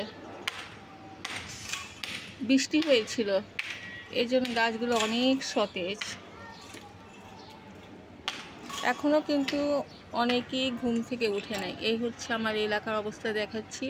বৃষ্টি হয়েছিল, এই জন্য গাছগুলো অনেক সতেজ। এখনও কিন্তু অনেকেই ঘুম থেকে উঠে নাই। এই হচ্ছে আমার এলাকার অবস্থা দেখাচ্ছি।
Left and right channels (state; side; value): identical; both; correlation 1.00